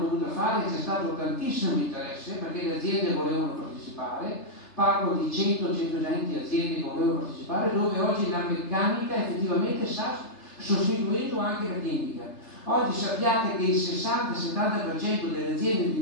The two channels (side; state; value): right; late; 3.3 ms